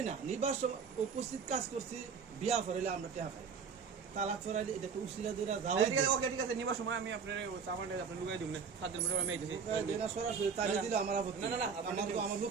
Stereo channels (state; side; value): quieter; left; 5.9 dB